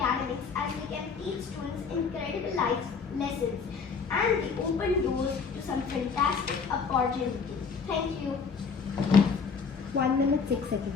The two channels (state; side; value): quieter; right; 5.5 dB